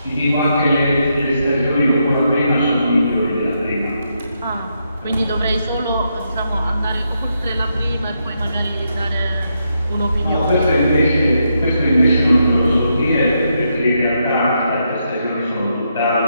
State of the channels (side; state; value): both; inverted; correlation -0.81